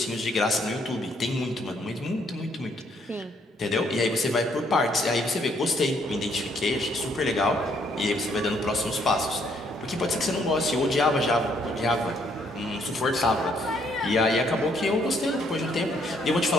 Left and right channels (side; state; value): both; normal; correlation 0.68